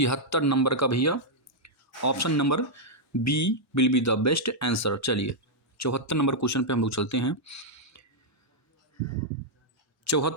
नंबर का भैया option number B will be the best answer. चलिए 74 नंबर क्वेश्चन पे हम लोग चलते हैं।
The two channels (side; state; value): both; normal; correlation -0.05